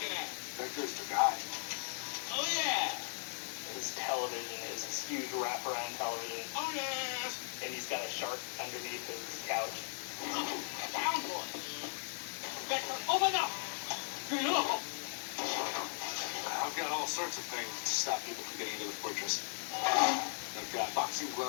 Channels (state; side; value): silent; right; digital silence